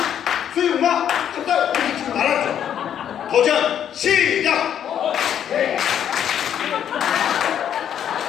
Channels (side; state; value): right; quieter; 9.5 dB